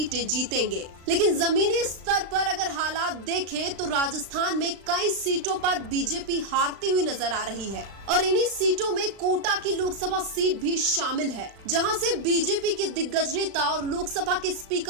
जीतेंगे, लेकिन जमीनी स्तर पर अगर हालात देखें तो राजस्थान में कई सीटों पर बीजेपी हारती हुई नजर आ रही है और इन्हीं सीटों में कोटा की लोकसभा सीट भी शामिल है, जहां से बीजेपी के दिग्गज नेता और लोकसभा के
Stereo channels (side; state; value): left; late; 36 ms